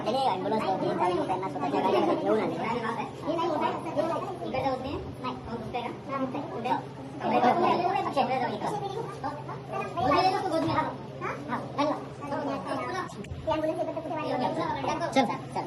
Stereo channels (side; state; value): both; identical; correlation 1.00